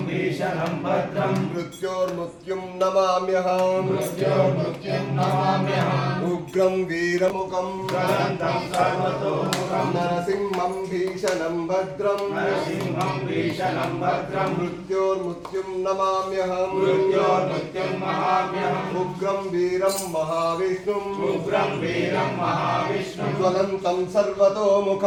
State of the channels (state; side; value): identical; both; correlation 1.00